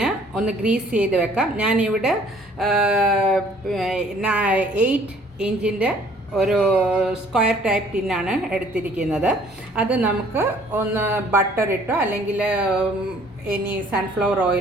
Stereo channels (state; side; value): normal; both; correlation 0.58